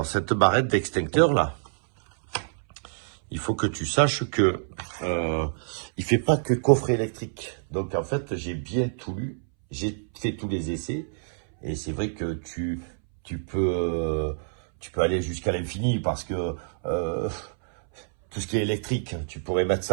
cette barrette d'extincteur là, il faut que tu saches que il fait pas que coffret électrique. Donc en fait, j'ai bien tout lu, j'ai fait tous les essais et c'est vrai que tu peux aller jusqu'à l'infini parce que tout ce qui est électrique, tu pourrais mettre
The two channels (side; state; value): left; silent; 60 dB below the other